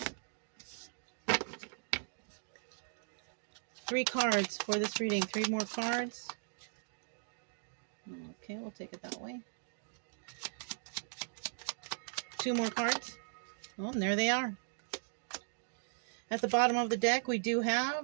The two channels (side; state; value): left; silent; digital silence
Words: 3 cards for this reading. 3 more cards. Okay, we'll take it that way. 2 more cards. Oh, and there they are. At the bottom of the deck, we do have,